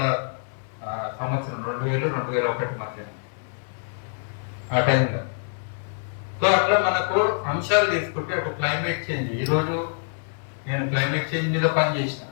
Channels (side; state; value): right; silent; digital silence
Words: సంవత్సరం 2000-2001 మధ్య ఆ టైంలో. సో అట్లా మనకు అంశాలు తీసుకుంటే అటు క్లైమేట్ చేంజ్, ఈరోజు నేను క్లైమేట్ చేంజ్ మీద పనిచేసిన